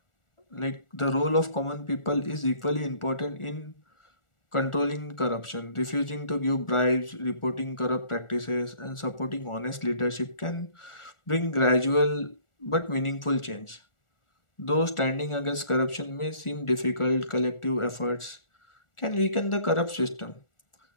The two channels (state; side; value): late; right; 1.4 ms